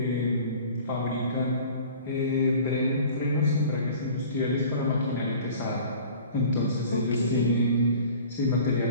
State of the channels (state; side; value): inverted; both; correlation -0.45